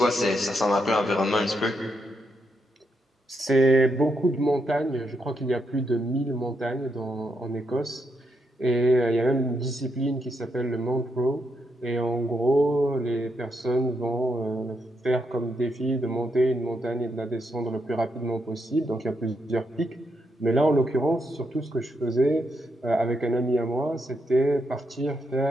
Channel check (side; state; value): both; normal; correlation 0.80